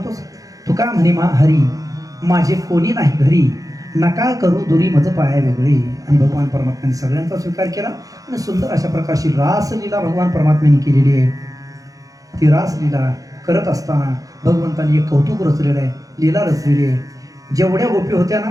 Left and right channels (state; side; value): late; left; 0.17 ms